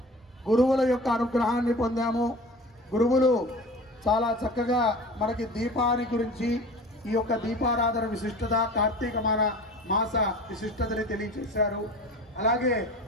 గురువుల యొక్క అనుగ్రహాన్ని పొందాము. గురువులు చాలా చక్కగా మనకి దీపాన్ని గురించి, ఈ యొక్క దీపారాధన విశిష్టత, కార్తీక మాస విశిష్టతని తెలియజేశారు. అలాగే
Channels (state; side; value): normal; both; correlation 0.38